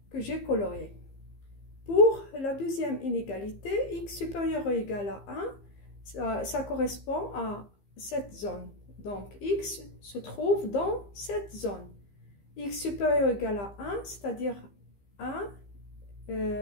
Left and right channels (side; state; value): right; late; 15 ms